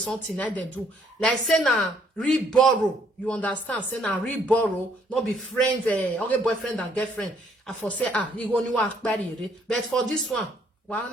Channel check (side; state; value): both; normal; correlation 0.66